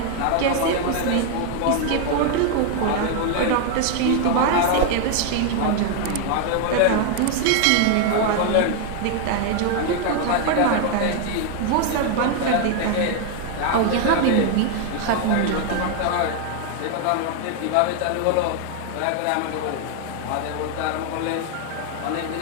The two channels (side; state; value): both; different; correlation 0.00